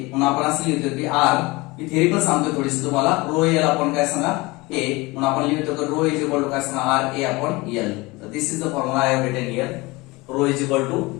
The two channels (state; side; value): quieter; right; 23.0 dB